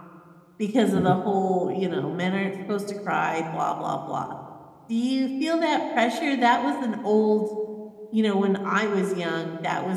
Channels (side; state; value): both; identical; correlation 1.00